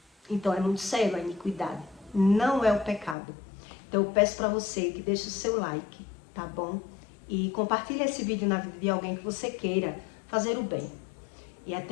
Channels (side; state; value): right; drops out; at 3.2 s